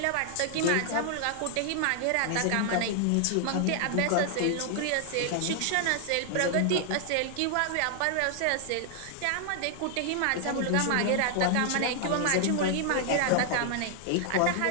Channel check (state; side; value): different; both; correlation 0.00